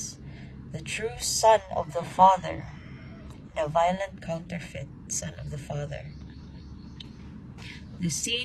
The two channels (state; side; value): identical; both; correlation 1.00